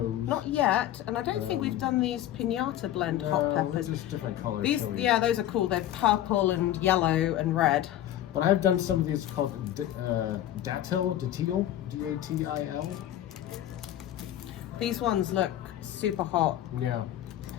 Not yet, and I don't think we've done these pinata blend hot peppers. Just different colors. These, yeah, those are cool. They're purple and yellow and red. But I've done some of these called datil, D-A-T-I-L. These ones look super hot. Yeah.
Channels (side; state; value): right; quieter; 12.5 dB